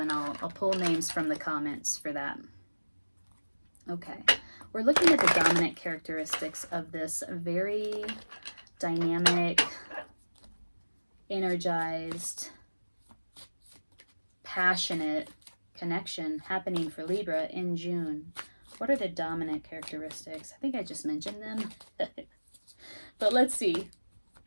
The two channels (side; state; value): both; inverted; correlation -1.00